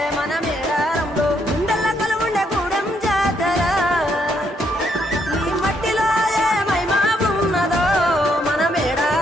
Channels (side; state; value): both; normal; correlation 0.74